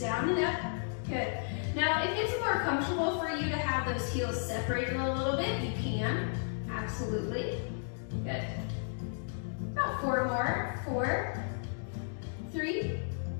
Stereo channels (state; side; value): silent; right; digital silence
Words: and up, good. Now, if it's more comfortable for you to have those heels separated a little bit, you can, absolutely. Good. About 4 more. 4, 3,